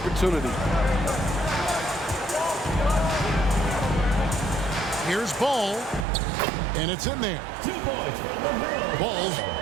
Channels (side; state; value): left; drops out; at 6.1 s